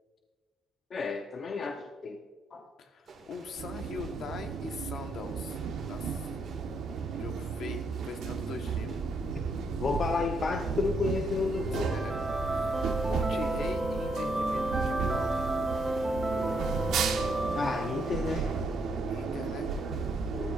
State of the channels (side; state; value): both; normal; correlation 0.74